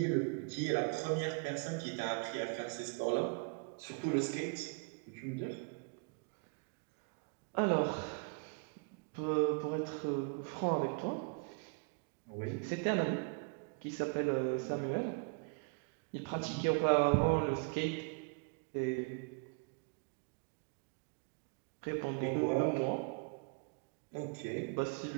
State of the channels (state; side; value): quieter; left; 36.4 dB